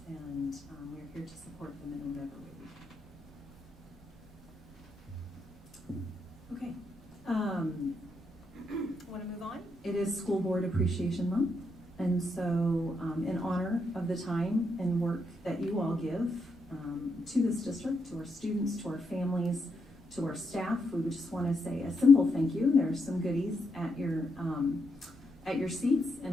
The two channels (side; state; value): both; normal; correlation 0.80